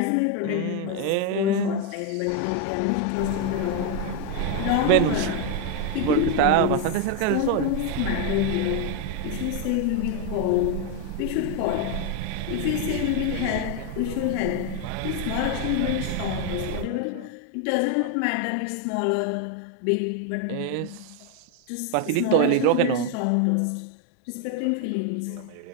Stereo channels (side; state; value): both; different; correlation 0.01